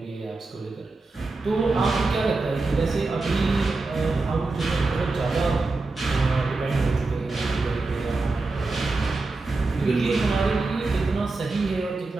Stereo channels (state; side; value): quieter; left; 3.5 dB